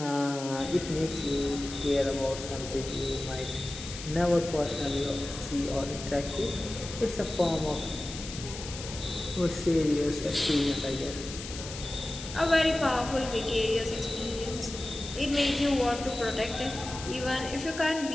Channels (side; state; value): left; noise; hiss, 10 dB below the sound